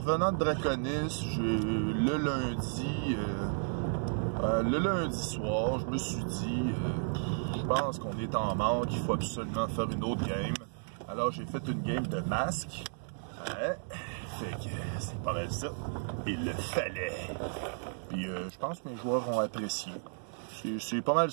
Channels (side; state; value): left; silent; digital silence